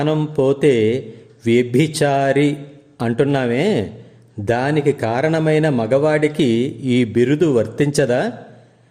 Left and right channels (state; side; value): identical; both; correlation 1.00